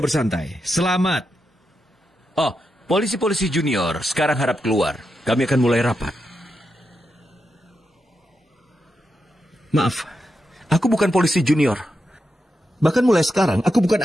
bersantai. Selamat. Oh, polisi-polisi junior sekarang harap keluar. Kami akan mulai rapat. Maaf, aku bukan polisi junior. Bahkan mulai sekarang, aku bukan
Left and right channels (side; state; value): both; normal; correlation 0.86